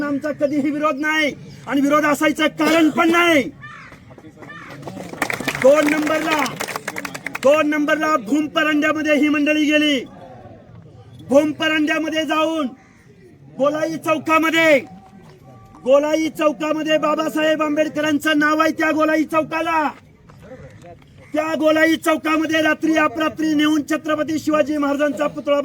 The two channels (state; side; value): identical; both; correlation 1.00